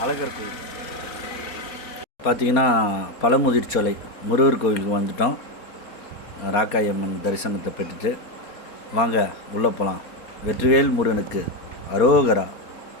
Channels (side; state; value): right; late; 4.2 ms